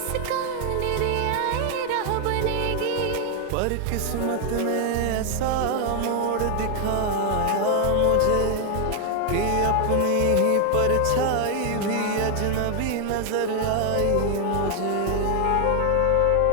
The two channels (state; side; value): different; both; correlation 0.00